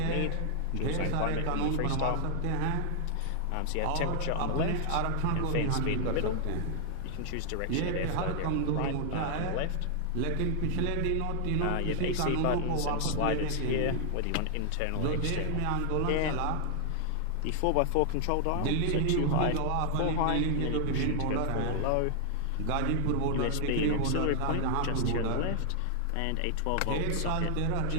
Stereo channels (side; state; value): both; different; correlation 0.00